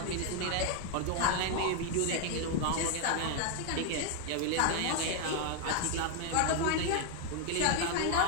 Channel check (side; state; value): both; different; correlation 0.01